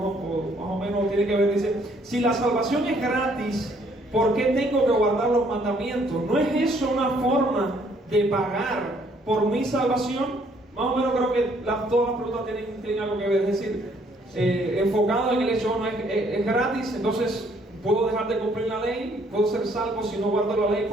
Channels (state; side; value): normal; both; correlation 0.65